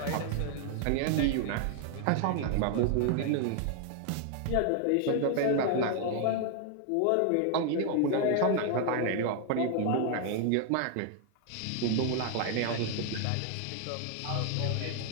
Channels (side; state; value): both; different; correlation 0.00